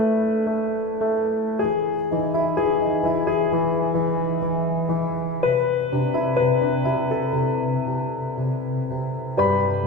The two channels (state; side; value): normal; both; correlation 0.35